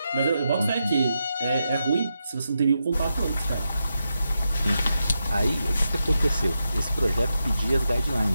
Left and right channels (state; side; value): inverted; both; correlation -0.86